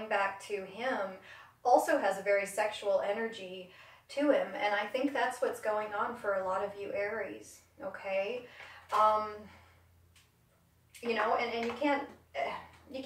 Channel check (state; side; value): identical; both; correlation 1.00